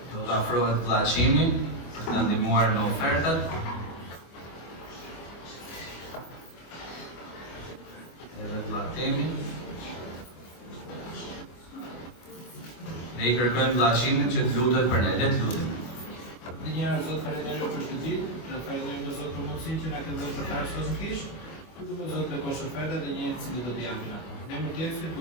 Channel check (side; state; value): right; late; 24 ms